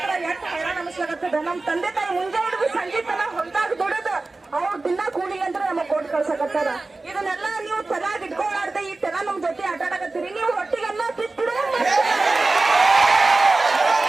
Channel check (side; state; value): left; quieter; 3.4 dB